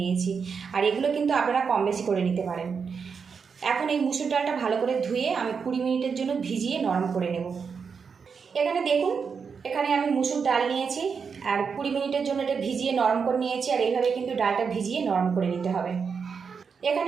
নিয়েছি। আর এগুলো কিন্তু আপনারা কম বেশি করে নিতে পারেন। এখন এই মুসুর ডালটা ভালো করে ধুয়ে আমি 20 মিনিটের জন্য ভিজিয়ে নরম করে নেব। এখানে দেখুন, এখানে আমি মুসুর ডাল নিয়েছি আর 20 মিনিটের জন্য এটা ভিজিয়ে নরম করে নিয়েছি। আর এইভাবে কিন্তু ডালটা ভিজিয়ে নরম করে নিতে হবে।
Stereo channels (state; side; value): quieter; left; 5.9 dB